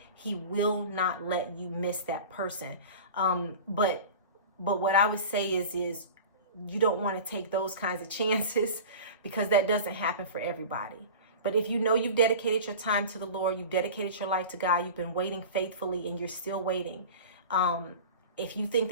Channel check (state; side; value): inverted; both; correlation -0.35